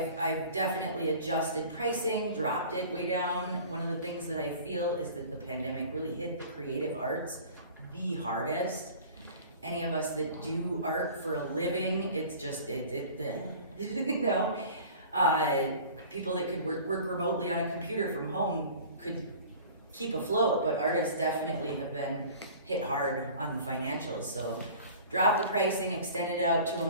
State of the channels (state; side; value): inverted; both; correlation -0.43